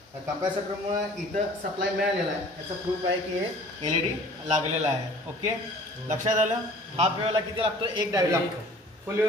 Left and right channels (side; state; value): both; normal; correlation 0.49